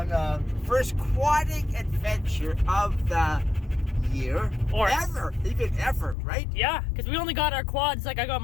the first quadding adventure of the year. Or even ever, right? Yeah, because we only got our quads, like I got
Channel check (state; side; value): drops out; right; at 6.2 s